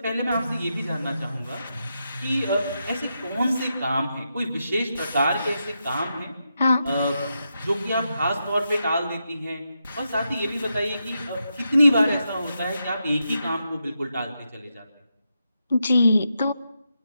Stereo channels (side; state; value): both; inverted; correlation -0.85